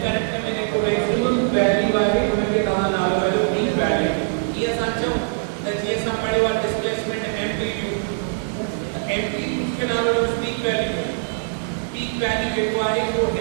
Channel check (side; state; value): left; silent; digital silence